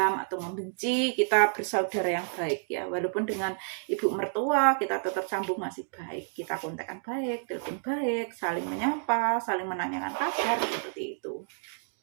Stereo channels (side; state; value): left; silent; digital silence